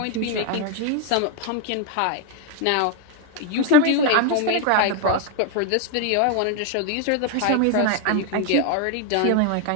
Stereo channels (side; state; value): both; different; correlation 0.01